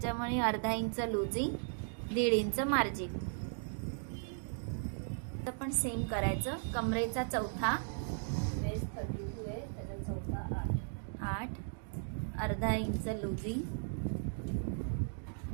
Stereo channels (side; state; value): left; silent; digital silence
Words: अर्धा इंच लुजिंग, 1.5 इंच मार्जिन। तर पण सेम करायचं। कमरेचा चौथा वेस्ट 32 आहे, त्याचा चौथा 8, अर्धा इंच लुजिंग,